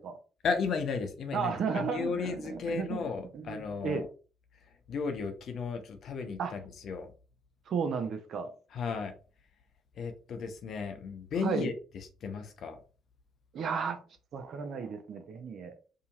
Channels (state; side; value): normal; both; correlation 0.65